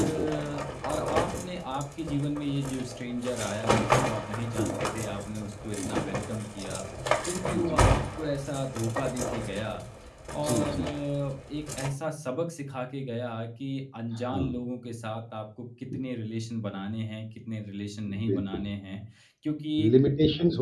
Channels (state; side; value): identical; both; correlation 1.00